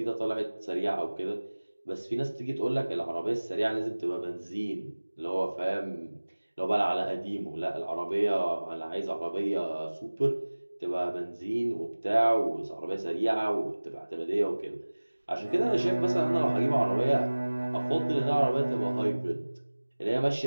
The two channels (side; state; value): both; inverted; correlation -1.00